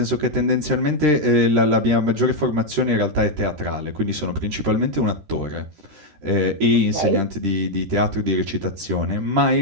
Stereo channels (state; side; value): late; left; 13 ms